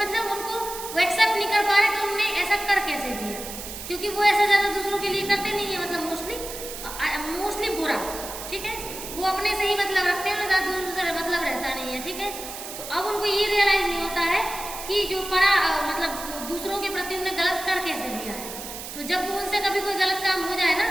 उनको वो एक्सेप्ट नहीं कर पा रहे कि उनने ऐसा कर कैसे दिया, क्योंकि वो ऐसा ज्यादा दूसरों के लिए करते नहीं है, मतलब मोस्टली बुरा। ठीक है, वो अपने से ही मतलब रखते हैं, ज्यादा दूसरों से मतलब रहता नहीं है। ठीक है, तो अब उनको ये रियलाइज नहीं होता है कि जो मतलब दूसरों के प्रति उन्हें गलत कर कैसे दिया है। तो जब उनसे कभी कोई गलत काम हो जाए ना,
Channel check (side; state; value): right; noise; hiss, 9 dB below the sound